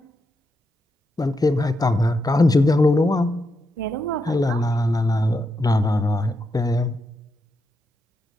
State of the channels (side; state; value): both; normal; correlation 0.84